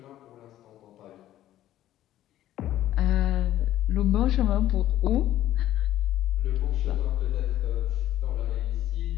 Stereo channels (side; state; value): right; quieter; 13.2 dB